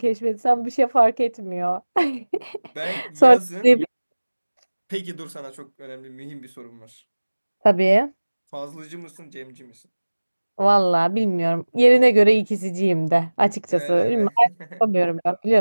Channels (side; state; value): both; inverted; correlation -1.00